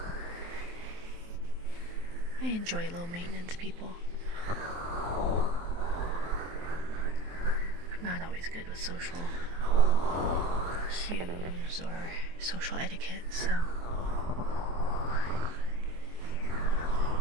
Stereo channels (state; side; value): late; left; 23 ms